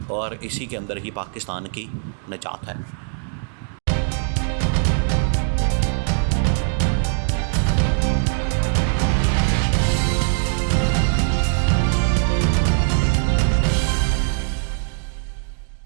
और इसी के अंदर ही पाकिस्तान की निजात है।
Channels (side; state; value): left; silent; digital silence